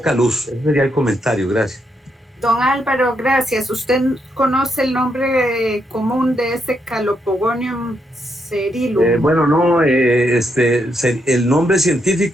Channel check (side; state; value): both; normal; correlation 0.79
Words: luz. Ese sería el comentario. Gracias. Don Álvaro, gracias. ¿Usted conoce el nombre común de ese Calopogonium cerilum? Bueno, no, el nombre